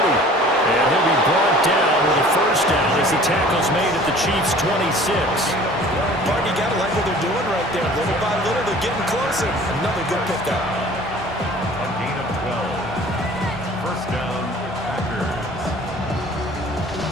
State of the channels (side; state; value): both; normal; correlation 0.48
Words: And he'll be brought down with a first down as the tackle's made at the Chiefs' 26. Mark, you got to like what they're doing right there. Little by little, they're getting closer. Another good pickup. A gain of 12. First down, Packers.